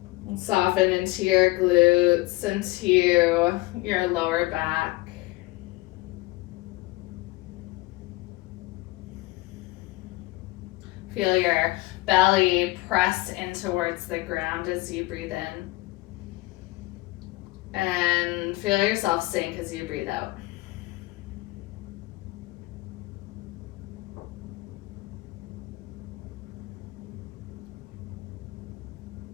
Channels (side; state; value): right; quieter; 20.4 dB